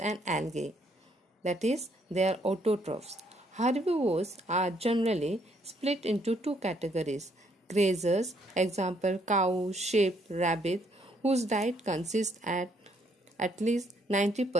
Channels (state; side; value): normal; both; correlation 0.70